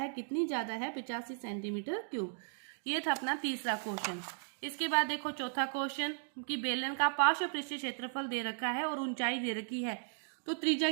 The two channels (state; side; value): silent; left; digital silence